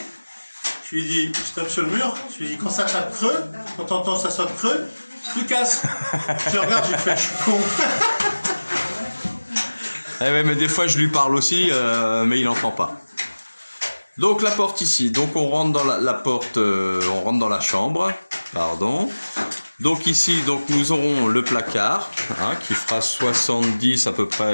Je lui dis, je tape sur le mur, je lui dis, quand ça tape creux, quand t'entends ça sonne creux, tu casses. Je regarde, je fais, je suis con. Eh ouais, mais des fois, je lui parle aussi, mais il n'entend pas. Donc, la porte ici. Donc, on rentre dans la porte, on rentre dans la chambre. Pardon. Donc ici, donc nous aurons le placard, hein, qui fera 70 à peu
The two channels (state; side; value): inverted; both; correlation -1.00